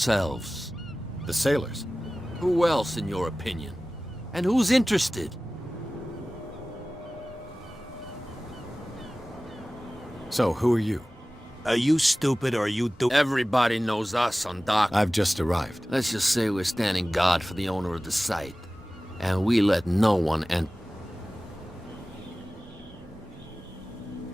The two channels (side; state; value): both; normal; correlation 0.97